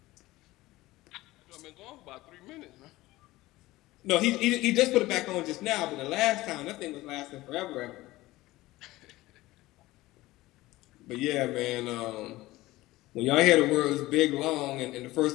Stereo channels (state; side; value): quieter; right; 18.3 dB